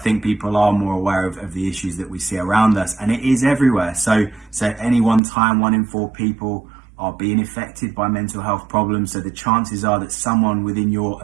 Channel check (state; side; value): drops out; left; at 5.2 s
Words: people are more aware of the issues that we see around us, and it is everywhere. So at any one time, 1 in 4 people are being affected by mental health problems. So the chances are that someone within your